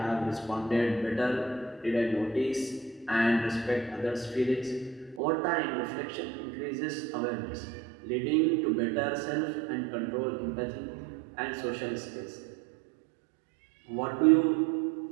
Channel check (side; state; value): left; drops out; at 5.2 s